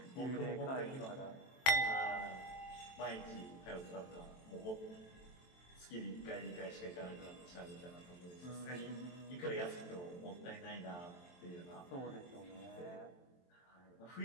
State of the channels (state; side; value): late; right; 23 ms